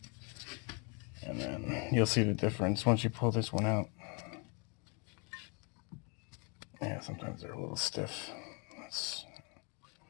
and then you'll see the difference once you pull this one out. Yeah, sometimes they're a little stiff.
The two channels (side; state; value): right; quieter; 34.2 dB